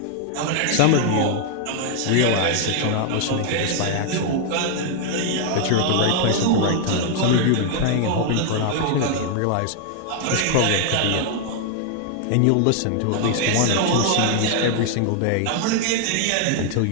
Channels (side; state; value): both; different; correlation 0.00